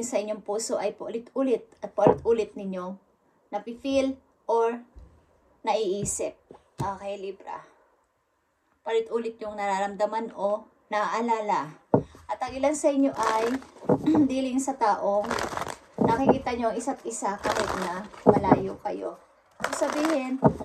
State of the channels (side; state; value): both; identical; correlation 1.00